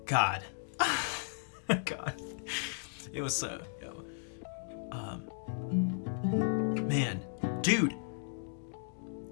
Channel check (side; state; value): right; silent; digital silence